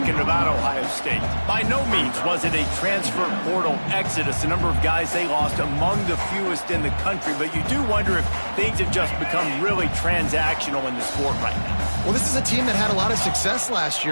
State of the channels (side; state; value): both; inverted; correlation -1.00